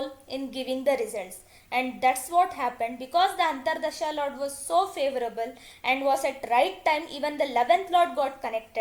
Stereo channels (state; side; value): identical; both; correlation 1.00